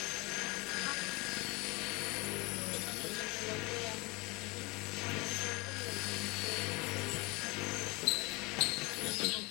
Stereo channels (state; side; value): quieter; right; 25.9 dB